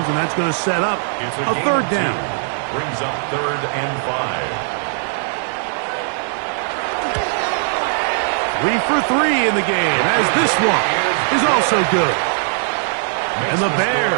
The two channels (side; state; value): left; silent; digital silence